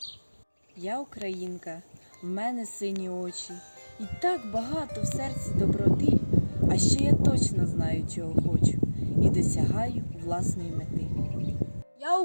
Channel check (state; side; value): inverted; both; correlation -1.00